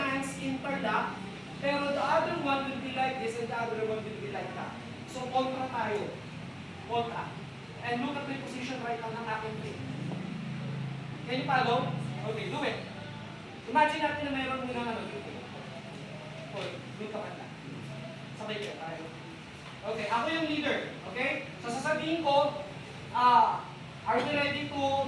interlock, pero the other one will be like this and the other one will be like that. So, kontra tayo. Kontra. And look at the position right now ng aking feet. Can you follow? Okay, do it. Imagine natin na mayroon muna ano dito. Okay, dito ka na. Sabay ka tayo. Okay, ako yung leader. Okay? So, sasabihin ko, are you ready to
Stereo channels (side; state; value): both; identical; correlation 1.00